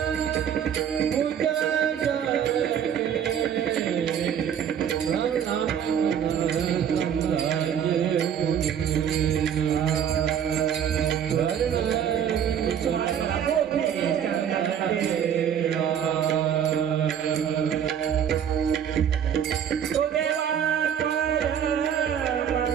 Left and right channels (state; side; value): quieter; left; 8.7 dB